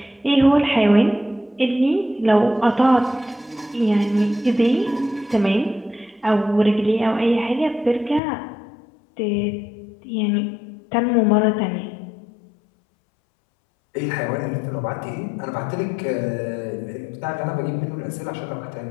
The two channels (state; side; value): drops out; right; at 8.2 s